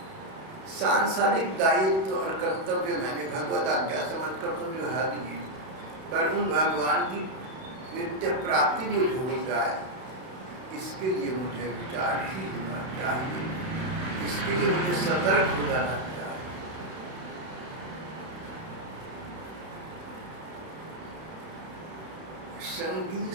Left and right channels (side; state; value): left; late; 31 ms